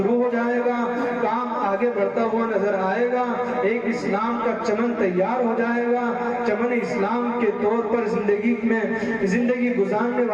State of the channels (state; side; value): identical; both; correlation 1.00